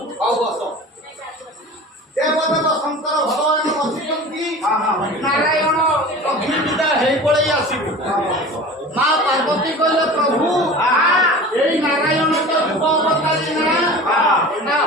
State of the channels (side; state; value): both; normal; correlation 0.37